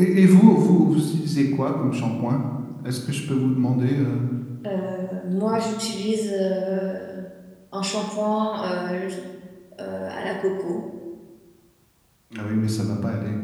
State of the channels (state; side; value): identical; both; correlation 1.00